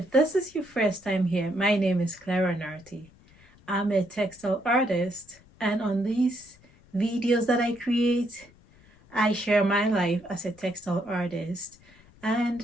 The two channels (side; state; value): left; noise; rumble, 27 dB below the sound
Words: this is your first time here, my name is Clara Narty. I'm a textile artist, and on these videos that I create, I share my life as a textile artist